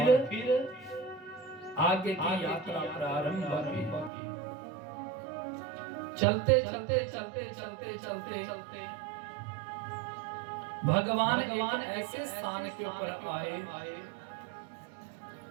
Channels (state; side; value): drops out; left; at 4.1 s